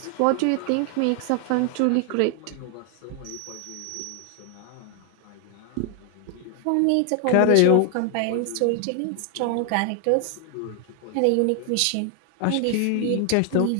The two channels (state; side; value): different; both; correlation 0.00